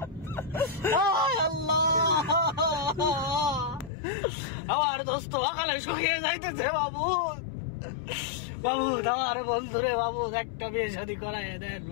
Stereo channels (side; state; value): right; drops out; at 3.9 s